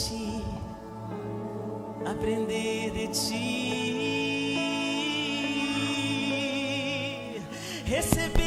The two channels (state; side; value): identical; both; correlation 1.00